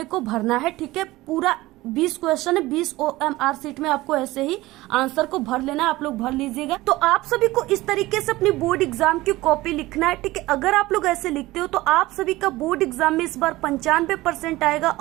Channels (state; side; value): quieter; left; 18.7 dB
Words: को भरना है। ठीक है, पूरा 20 क्वेश्चन है, 20 OMR शीट में आपको ऐसे ही आंसर को भर लेना है, आप लोग भर लीजिएगा। तो आप सभी को इस तरीके से अपनी बोर्ड एग्जाम की कॉपी लिखना है। ठीक है, अगर आप लोग ऐसे लिखते हो तो आप सभी का बोर्ड एग्जाम में इस बार 95% आएगा